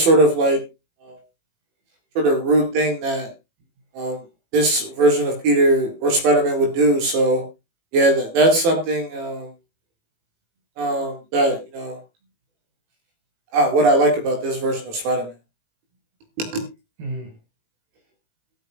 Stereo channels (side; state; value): left; late; 18 ms